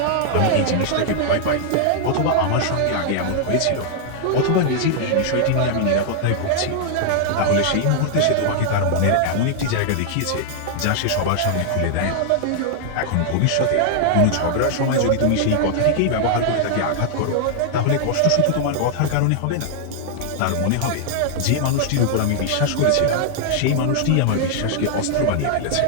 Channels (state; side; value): different; both; correlation -0.01